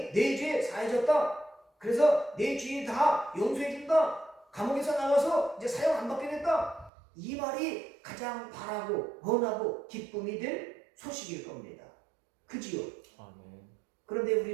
내 죄 사해졌다. 그래서 내 죄 다 용서해준다. 감옥에서 나와서 이제 사형 안 받게 됐다. 이 말이 가장 바라고 원하고 기쁨이 될 소식일 겁니다. 그지요? 그런데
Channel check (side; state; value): left; drops out; at 6.9 s